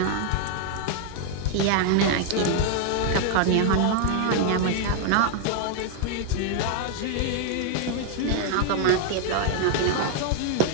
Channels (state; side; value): different; both; correlation 0.00